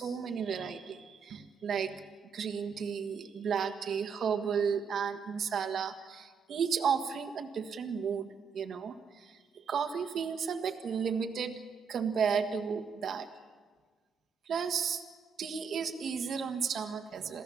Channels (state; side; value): quieter; left; 6.3 dB